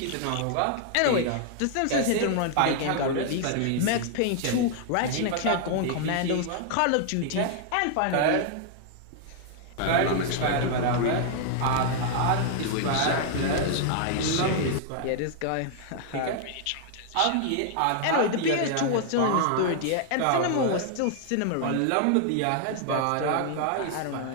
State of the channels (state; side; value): different; both; correlation 0.00